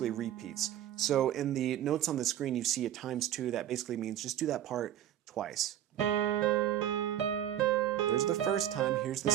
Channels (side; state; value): left; quieter; 11.4 dB